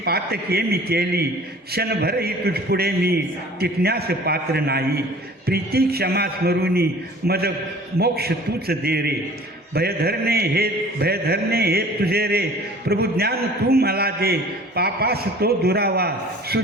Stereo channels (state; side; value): normal; both; correlation 0.47